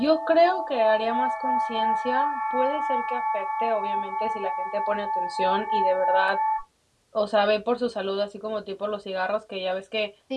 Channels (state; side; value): identical; both; correlation 1.00